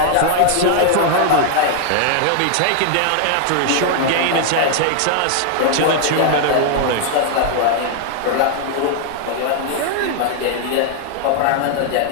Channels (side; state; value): both; different; correlation 0.00